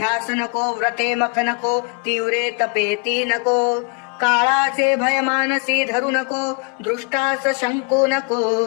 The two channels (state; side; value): quieter; right; 34.9 dB